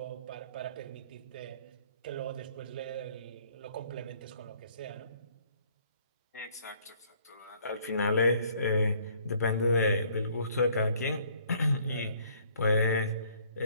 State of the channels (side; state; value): both; inverted; correlation -0.61